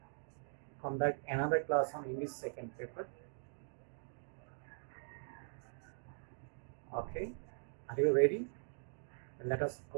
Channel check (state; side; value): silent; left; digital silence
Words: conduct another class on English second paper. Okay, are you ready? Let us